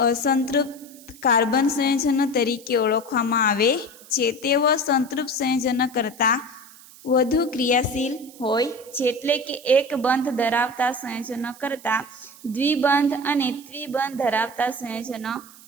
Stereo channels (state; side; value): noise; right; hiss, 21 dB below the sound